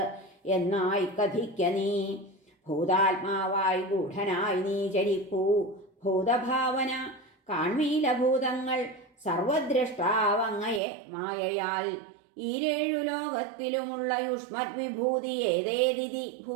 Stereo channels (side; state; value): left; drops out; at 10.8 s